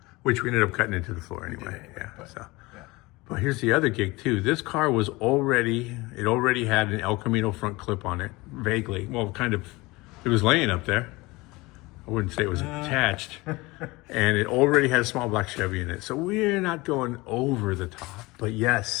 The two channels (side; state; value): right; quieter; 22.3 dB